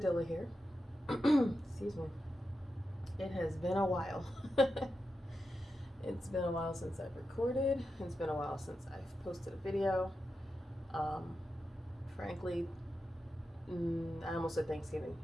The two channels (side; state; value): both; normal; correlation 0.89